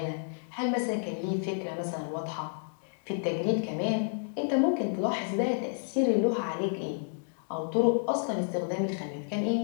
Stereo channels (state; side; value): silent; right; digital silence